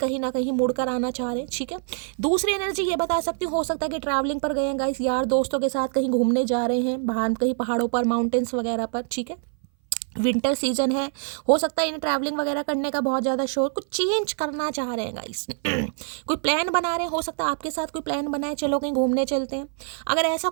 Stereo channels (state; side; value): silent; left; 58 dB below the other